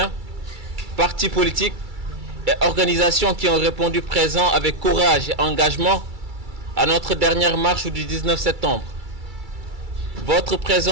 partis politiques et organisations qui ont répondu présents avec courage et engagement à notre dernière marche du 19 septembre. Votre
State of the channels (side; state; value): left; late; 2.3 ms